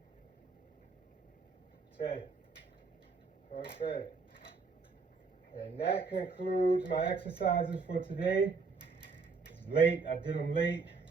10. Okay. And that concludes my exercises for today. It's late. I did them late.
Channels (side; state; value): left; quieter; 4.6 dB